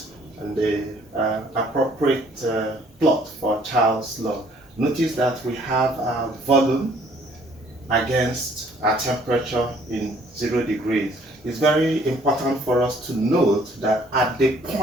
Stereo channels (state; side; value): normal; both; correlation 0.60